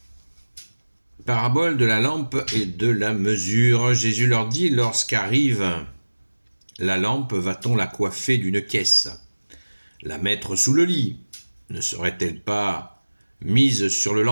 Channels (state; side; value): inverted; both; correlation -1.00